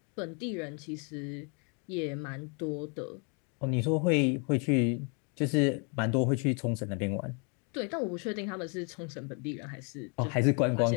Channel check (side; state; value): right; quieter; 36.9 dB